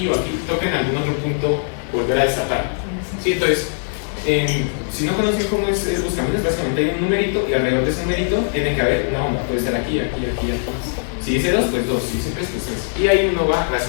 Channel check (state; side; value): silent; right; digital silence